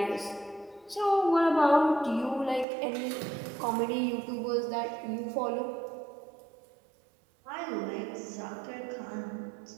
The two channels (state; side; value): drops out; left; at 2.7 s